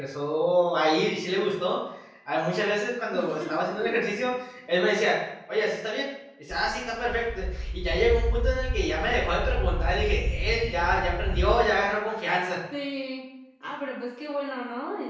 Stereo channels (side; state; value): both; identical; correlation 1.00